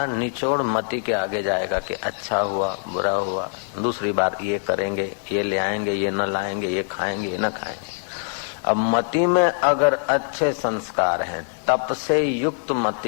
निचोड़ मति के आगे जाएगा कि अच्छा हुआ, बुरा हुआ, दूसरी बार ये करेंगे, ये ले आएंगे, ये न लाएंगे, ये खाएंगे, ये न खाएंगे। अब मति में अगर अच्छे संस्कार हैं, तप से युक्त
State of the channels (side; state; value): right; silent; digital silence